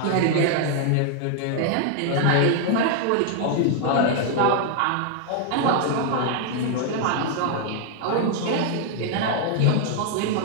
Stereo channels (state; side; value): different; both; correlation 0.00